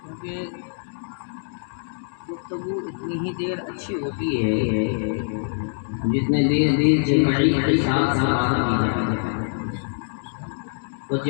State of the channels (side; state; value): right; silent; digital silence